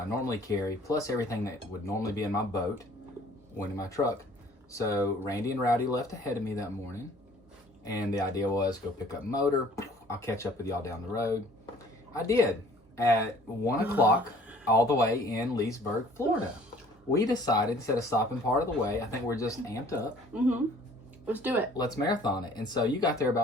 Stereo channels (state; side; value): normal; both; correlation 0.54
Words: normally carry, plus everything that would normally be in my boat, went in my truck. So Randy and Rowdy left ahead of me that morning. And the idea was go pick up motor. I'll catch up with y'all down the road. I did. At 1 o'clock, all the way in Leesburg, Florida. We decided, instead of stopping part of the way, I think we're just amped up. Mm-hmm. Let's do it. Let's marathon it. And so you got there